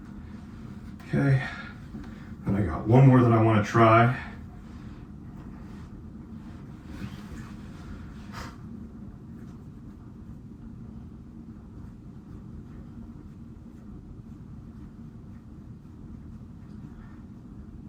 Okay, and I got one more that I want to try.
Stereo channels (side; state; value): both; identical; correlation 1.00